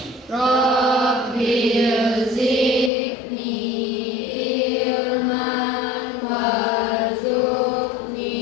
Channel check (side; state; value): right; drops out; at 2.9 s